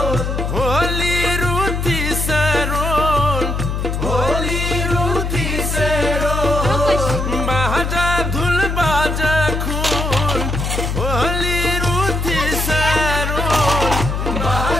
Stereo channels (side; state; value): left; noise; hum, 2 dB below the sound